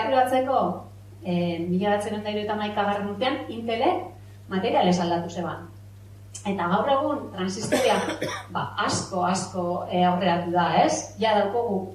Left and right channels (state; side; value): identical; both; correlation 1.00